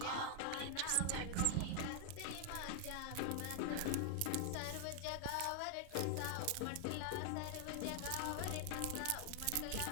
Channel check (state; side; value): different; both; correlation 0.00